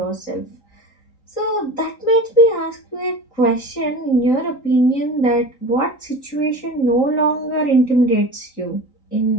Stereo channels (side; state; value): right; late; 3.8 ms